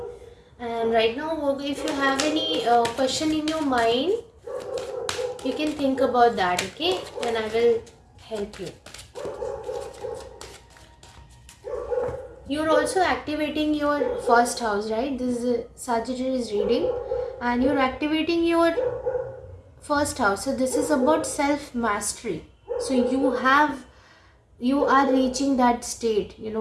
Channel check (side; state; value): both; identical; correlation 1.00